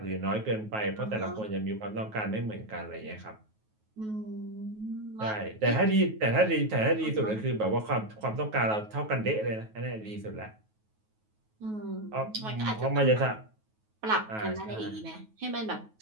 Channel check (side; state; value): left; late; 9.3 ms